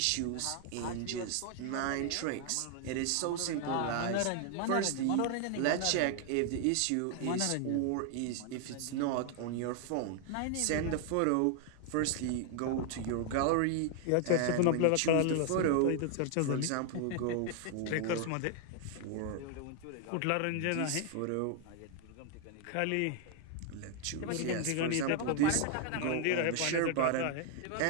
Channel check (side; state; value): both; different; correlation 0.00